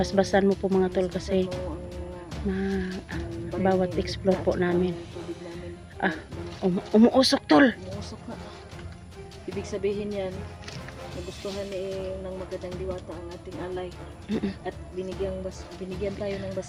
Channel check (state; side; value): identical; both; correlation 1.00